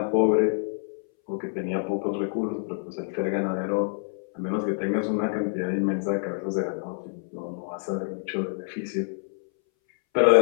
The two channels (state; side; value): silent; right; 60 dB below the other